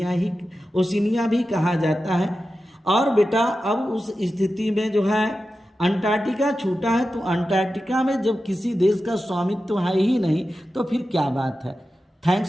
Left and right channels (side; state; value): both; normal; correlation 0.92